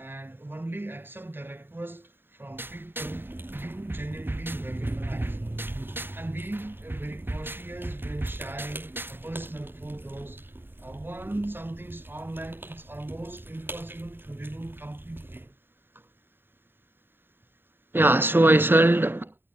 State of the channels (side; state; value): left; late; 0.10 ms